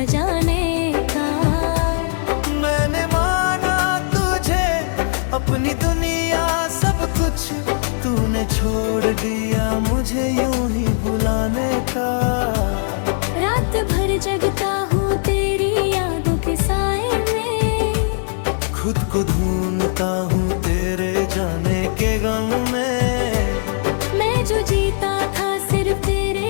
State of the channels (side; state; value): right; silent; digital silence